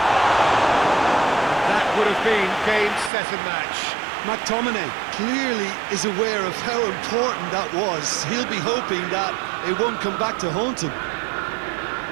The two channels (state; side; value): drops out; left; at 3.1 s